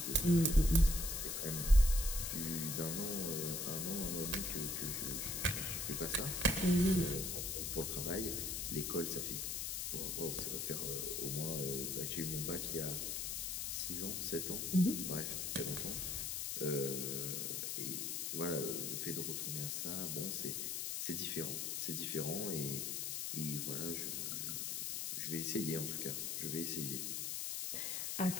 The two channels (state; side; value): noise; left; hiss, 2 dB below the sound